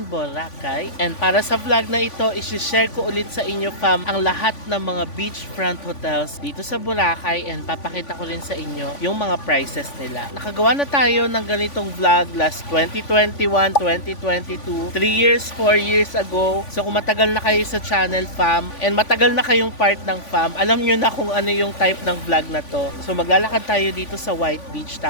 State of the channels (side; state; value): right; late; 3.5 ms